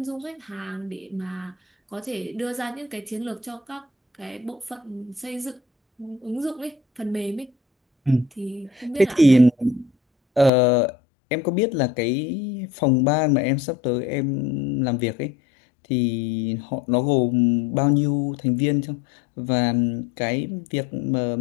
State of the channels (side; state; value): right; drops out; at 10.5 s